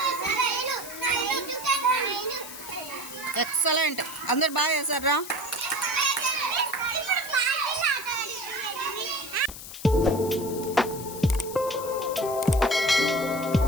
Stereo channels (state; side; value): noise; left; hiss, 12 dB below the sound